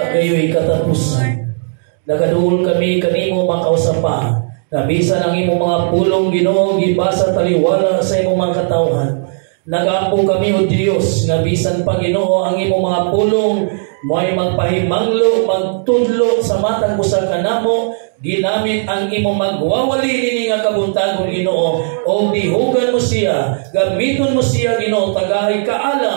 kayo'y katapusan. Nagaduol kami kanimo makausapa. Nabisan ang imong mga pulong Ginoo gibasa taliwala sa imong mga katawhan. Nag-ampo kami o Diyos, nga bisan pa Ginoo ang imong mga pulong, mo'y magpahimanglo, magtudlo sa matang usa kanamo, ginamit ang imong magwawali nini nga kabuntagon Ginoo, o dihugan mo siya, gamiton mo siya Ginoo, tagahay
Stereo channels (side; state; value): left; silent; digital silence